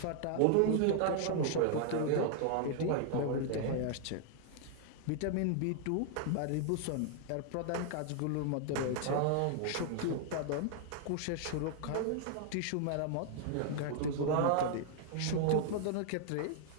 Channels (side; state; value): both; different; correlation 0.00